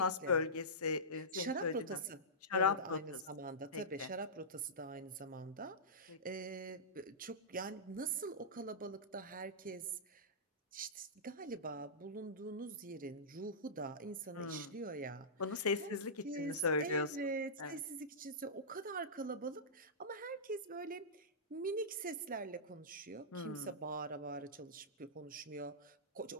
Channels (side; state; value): both; normal; correlation -0.17